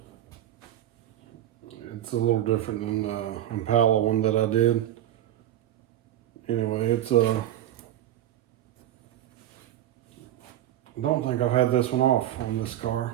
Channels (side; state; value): left; quieter; 12.2 dB